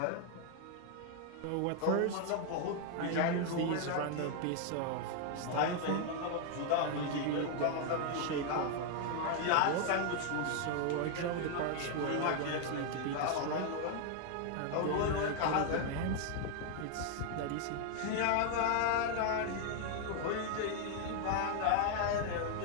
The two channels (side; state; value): both; different; correlation 0.00